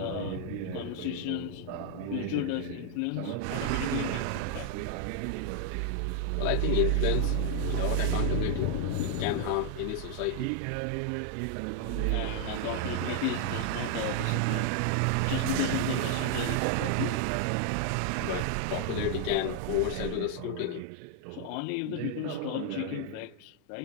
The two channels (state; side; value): different; both; correlation 0.00